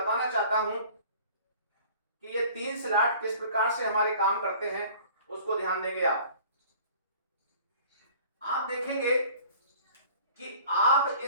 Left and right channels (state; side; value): inverted; both; correlation -0.48